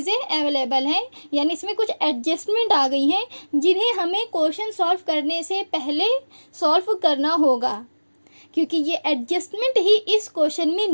अवेलेबल हैं। यानी इसमें कुछ एडजस्टमेंट आ गई हैं जिन्हें हमें क्वेश्चन सॉल्व करने से पहले सॉल्व करना होगा, क्योंकि ये एडजस्टमेंट ही इस क्वेश्चन में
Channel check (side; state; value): both; inverted; correlation -1.00